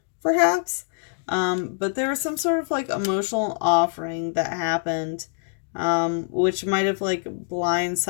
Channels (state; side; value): silent; right; digital silence